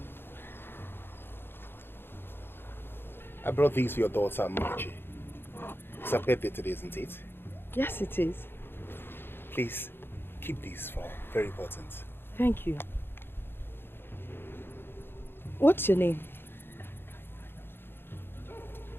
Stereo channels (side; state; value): right; late; 0.10 ms